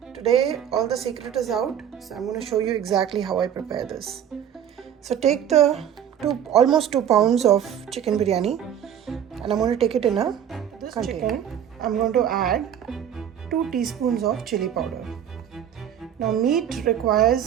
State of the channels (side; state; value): left; quieter; 9.4 dB